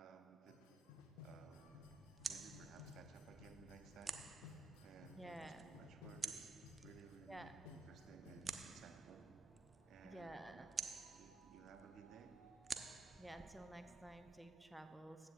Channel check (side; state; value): left; quieter; 3.2 dB